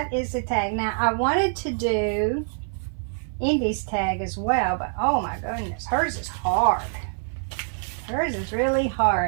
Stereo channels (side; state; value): left; silent; 57 dB below the other